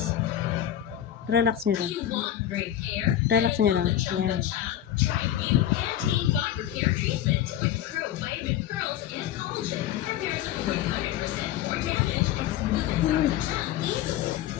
Relax niyo lang. Relax niyo lang. Yan.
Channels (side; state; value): right; quieter; 11.7 dB